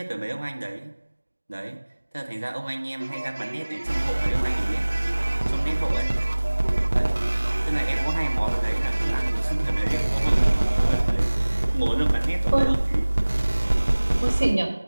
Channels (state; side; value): inverted; both; correlation -1.00